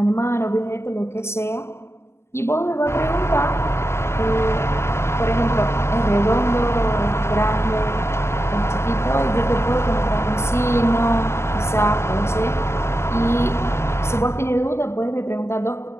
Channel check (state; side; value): late; right; 0.13 ms